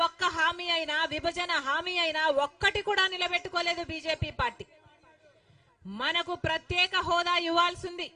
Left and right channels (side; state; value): both; identical; correlation 1.00